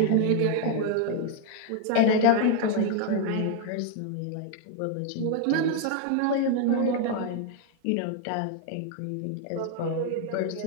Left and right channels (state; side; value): different; both; correlation 0.00